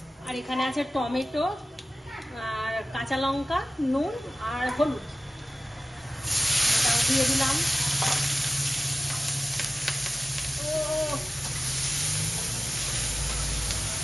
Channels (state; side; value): normal; both; correlation 0.92